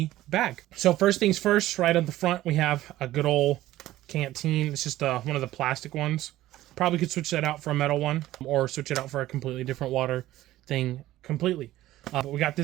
bag. So first things first, right on the front, we have a good old canteen. It's just one of the plastic ones. Probably could switch that out for a metal one or switch it out for a completely different water thing completely. But we got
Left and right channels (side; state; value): left; quieter; 15.2 dB